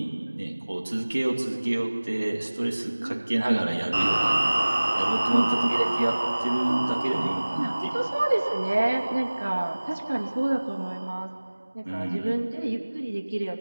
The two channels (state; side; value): inverted; both; correlation -1.00